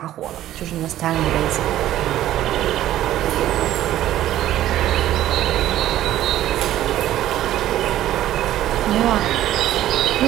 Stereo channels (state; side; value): quieter; left; 13.2 dB